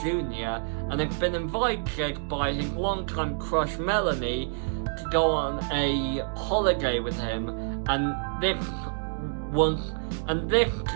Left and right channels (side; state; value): left; silent; digital silence